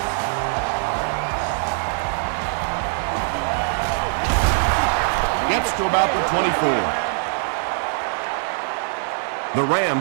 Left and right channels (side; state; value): left; silent; 55 dB below the other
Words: Gets to about the 24. The